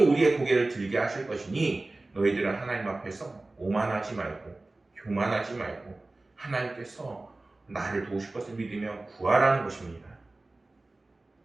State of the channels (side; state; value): left; quieter; 3.0 dB